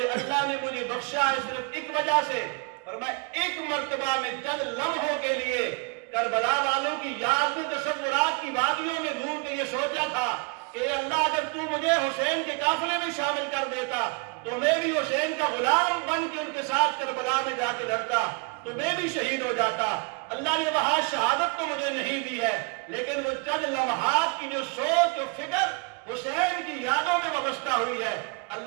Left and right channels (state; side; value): quieter; left; 32.4 dB